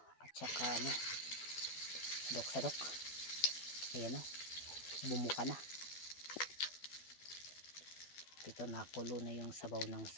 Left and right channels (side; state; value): right; late; 12 ms